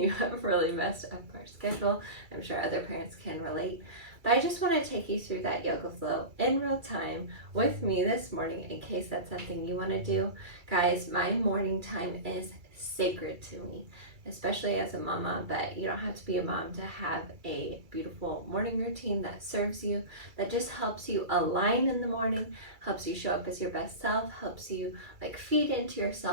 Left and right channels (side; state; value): left; late; 2.3 ms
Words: have really messed up our schedule. I'm sure other parents can relate. But I just want to take you through that yoga flow in real time with me this morning in case that's something you want to do. Guys, my morning time is sacred to me, especially as a mama, but you don't have to be a mom to have a beautiful morning routine that serves you, that just helps you align in the morning, helps you show up as your best self, helps you feed into